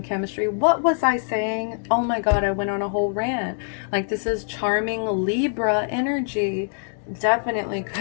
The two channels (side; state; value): right; silent; 63 dB below the other